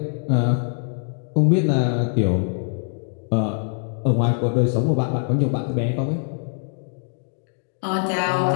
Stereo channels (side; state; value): right; silent; 59 dB below the other